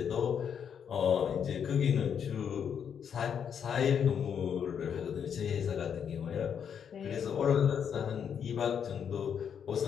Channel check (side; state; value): right; quieter; 7.8 dB